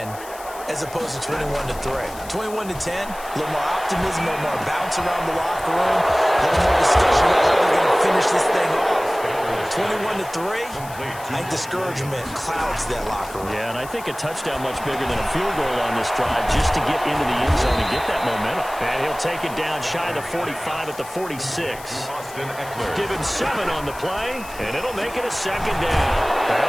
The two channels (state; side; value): noise; left; hiss, 17 dB below the sound